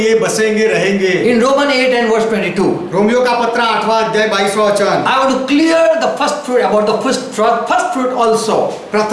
बसेंगे रहेंगे। In Romans 8 and verse 22, Romeo का पत्र 8वां अध्याय 22वां वचन। I want to clear the first fruit about the first fruit also.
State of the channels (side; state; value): both; identical; correlation 1.00